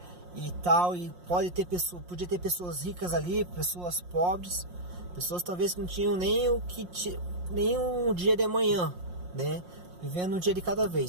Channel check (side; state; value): left; late; 5.6 ms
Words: e tal, e podia ter pessoas ricas ali, pessoas pobres, pessoas talvez que não tinham nem um dia de amanhã, né? Vivendo um dia de cada